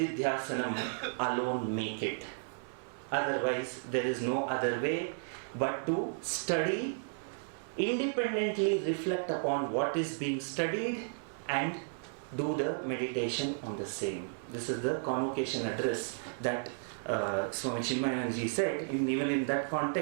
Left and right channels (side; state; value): left; silent; digital silence